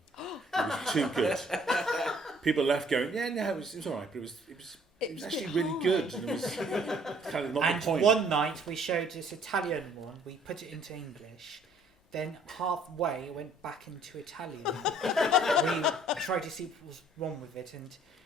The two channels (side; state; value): both; normal; correlation 0.59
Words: It was too good. People left going, yeah, no, it was all right, but it was a actually bit really high. good. And it was kind of not And the point. one night we showed this Italian one, we put it into English, then halfway it went back into Italian. We tried to see what was wrong with it,